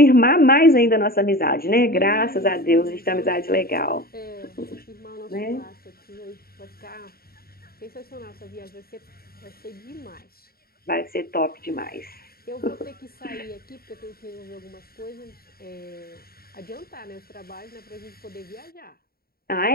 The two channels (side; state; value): right; late; 0.44 ms